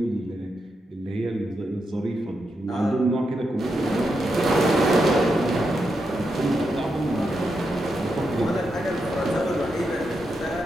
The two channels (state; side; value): normal; both; correlation 0.85